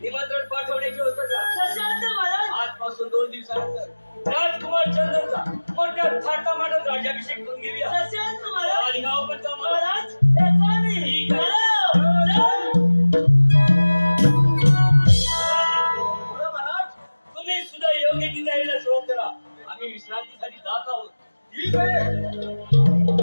निमंत्रण पाठवण्याची होतं का. सशांत महाराज. आजपासून 2 दिवसानंतर राजकुमार चंदनचा मोठ्या थाटामाटात राज्याभिषेक करून घेऊया. सशांत महाराज. आणि गाव पण का महाराज येतो आम्ही. ठीक आहे. महाराज तुम्ही सुद्धा योग्य ती तयारीला सुरुवात करा. आम्ही विश्रांतीसाठी जात आहोत. ठीक आहे.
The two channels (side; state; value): both; inverted; correlation -1.00